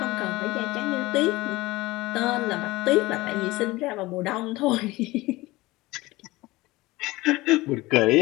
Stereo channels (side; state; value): right; quieter; 20.0 dB